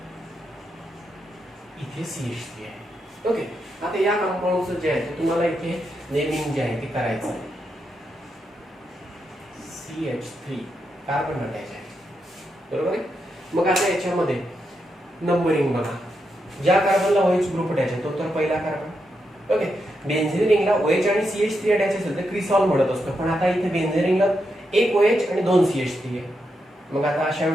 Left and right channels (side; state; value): both; normal; correlation 0.84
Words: इथे CH3 आहे. ओके, आता या कंपाऊंडचं जे आहे ते तुम्हाला इथे नेमिंग जे आहे ते करायचं आहे. CH3 कार्बन अटॅच आहे, बरोबर आहे. मग आता याच्यामध्ये नंबरिंग बघा. ज्या कार्बनला OH ग्रुप अटॅच आहे तो तर पहिला कार्बन. ओके, बेन्झीन रिंगला OH आणि CH3 अटॅच असेल तर क्रिसॉल म्हणत असतो, पण आता इथे बेन्झीन रिंगला एक OH आणि 2 CH3 आहे. मग आता अशा